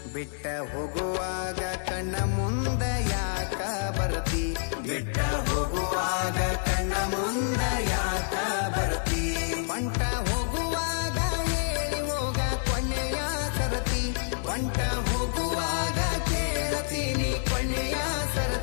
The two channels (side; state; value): right; silent; digital silence